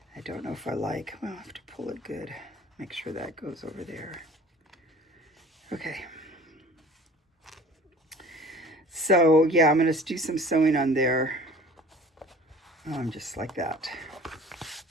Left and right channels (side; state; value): both; normal; correlation 0.46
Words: I don't know if I like, well, I have to pull it good. Make sure that goes over there. Okay. So yeah, I'm going to do some sewing on there. Just like that.